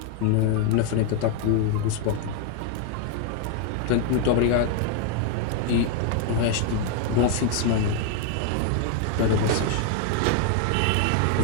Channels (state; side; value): different; both; correlation 0.00